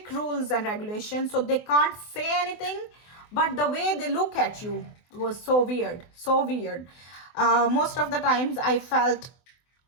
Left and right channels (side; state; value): right; late; 24 ms